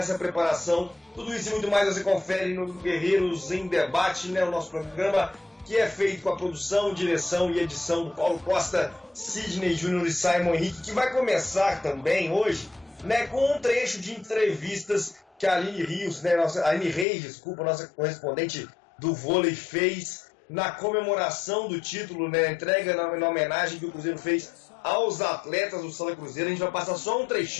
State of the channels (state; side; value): drops out; right; at 17.1 s